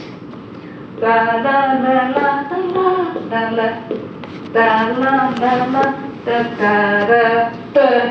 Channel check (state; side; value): identical; both; correlation 1.00